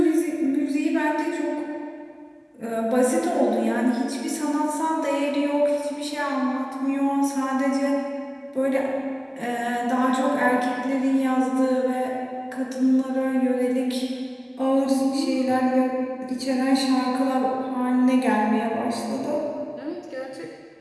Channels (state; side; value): identical; both; correlation 1.00